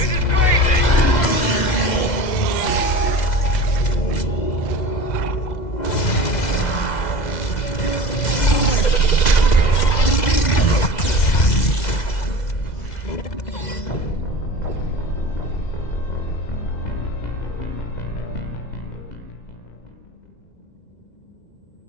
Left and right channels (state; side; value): late; right; 2.0 ms